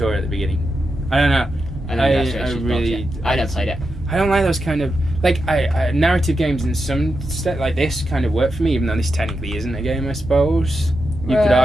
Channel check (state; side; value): normal; both; correlation 0.87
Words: at the beginning. I don't know. I never played it. I don't like those kind of narrative games in some like this kind of work for me, even though this technically isn't a game, I suppose. You could